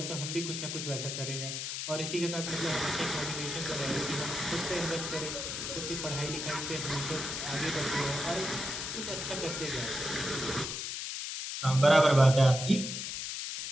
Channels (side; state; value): left; noise; hiss, 4 dB below the sound